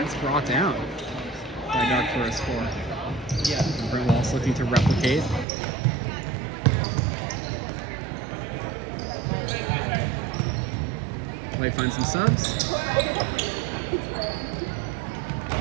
it's brought down by Doug for a score. Yeah. Brent Wallace looking to replicate. Light finds some subs.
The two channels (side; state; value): left; drops out; at 5.5 s